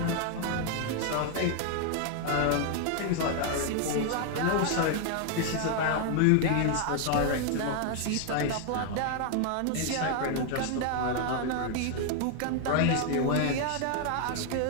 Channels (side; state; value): both; different; correlation 0.00